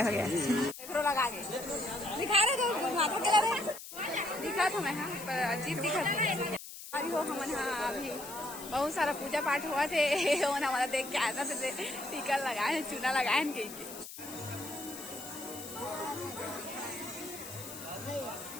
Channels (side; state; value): left; noise; hiss, 12 dB below the sound